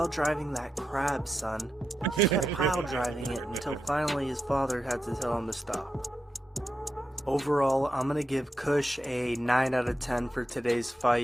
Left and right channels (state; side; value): normal; both; correlation 0.87